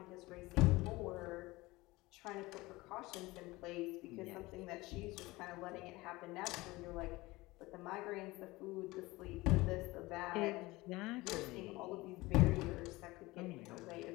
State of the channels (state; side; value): quieter; right; 20.8 dB